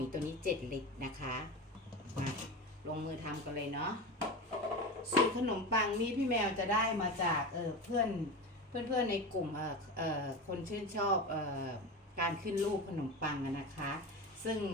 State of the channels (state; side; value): normal; both; correlation 0.25